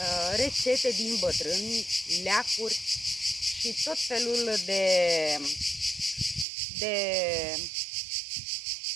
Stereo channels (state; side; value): drops out; left; at 6.5 s